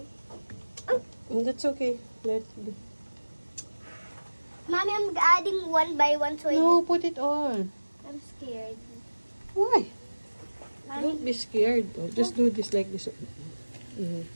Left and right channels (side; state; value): both; inverted; correlation -1.00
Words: That's okay. Mommy, I'm adding one by one so No, put it all. I'm scared. Why? Mommy, Don't be scared. Just do this like this.